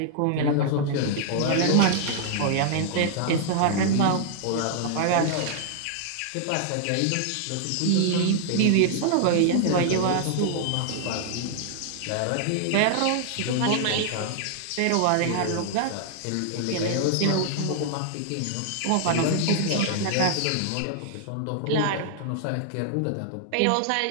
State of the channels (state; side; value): different; both; correlation 0.00